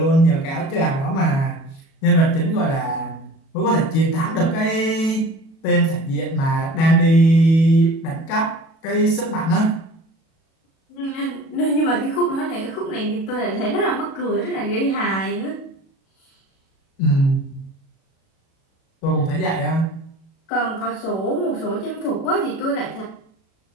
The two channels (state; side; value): late; right; 37 ms